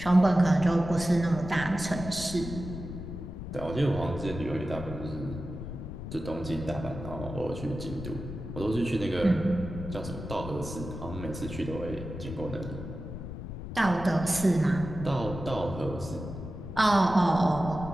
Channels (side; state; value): left; noise; rumble, 9 dB below the sound